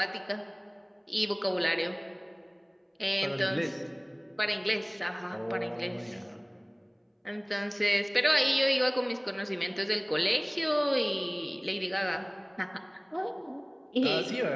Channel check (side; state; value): both; identical; correlation 1.00